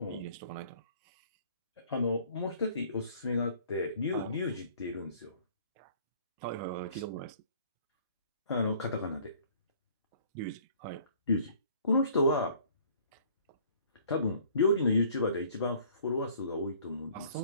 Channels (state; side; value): inverted; both; correlation -0.56